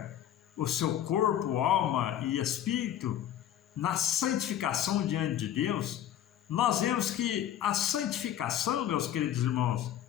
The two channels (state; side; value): quieter; right; 11.0 dB